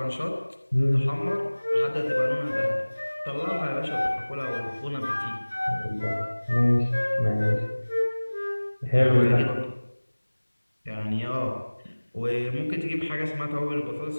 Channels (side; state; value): both; inverted; correlation -1.00